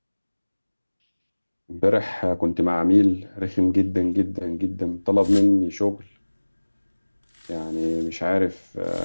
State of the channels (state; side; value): inverted; both; correlation -1.00